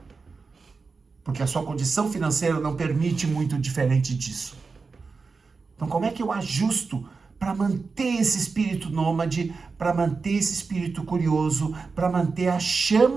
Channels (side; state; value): left; quieter; 4.5 dB